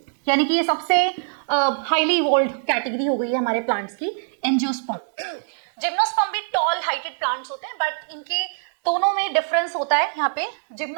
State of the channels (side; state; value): left; silent; digital silence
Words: यानी कि ये सबसे हाईली इवॉल्व्ड कैटेगरी हो गई है हमारे प्लांट्स की, एंजियोस्पर्म। जिम्नोस्पर्म भी टॉल हाइटेड प्लांट्स होते हैं बट इनके दोनों में डिफरेंस होता है। यहाँ पे